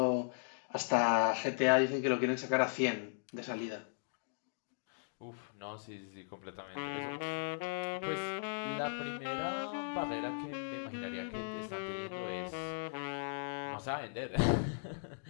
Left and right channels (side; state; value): right; silent; digital silence